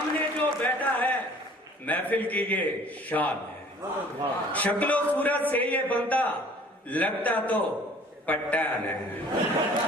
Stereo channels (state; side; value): normal; both; correlation 0.51